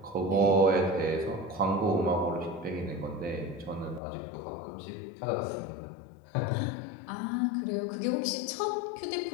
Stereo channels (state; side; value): drops out; right; at 4.0 s